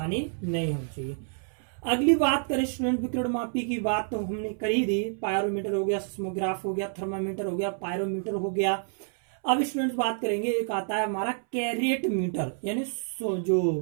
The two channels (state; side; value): silent; left; 59 dB below the other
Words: नहीं होनी चाहिए। अगली बात करें स्टूडेंट, विकर्ण मापी की बात तो हमने कर ही दी। पायरोमीटर हो गया, सिस्मोग्राफ हो गया, थर्मामीटर हो गया, पायरोमीटर हो गया। अब स्टूडेंट्स बात करेंगे, एक आता है हमारा कैरेट मीटर, यानी